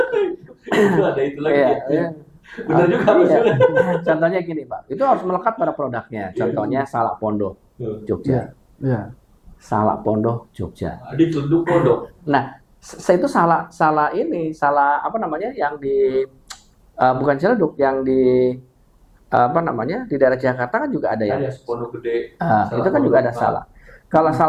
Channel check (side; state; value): both; identical; correlation 1.00